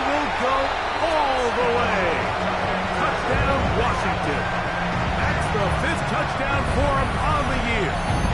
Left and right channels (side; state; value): both; identical; correlation 1.00